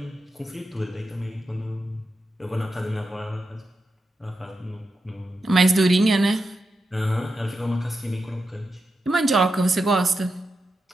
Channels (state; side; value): normal; both; correlation 0.88